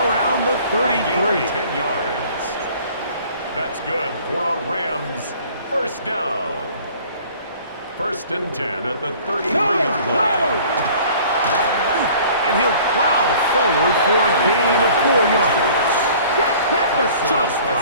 around the 33. 10 yards. That's good for a Rams first down. 1st and 10 at the 33-yard line. And he'll plow forward for a gain of 4 yards. So,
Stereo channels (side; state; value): both; inverted; correlation -0.50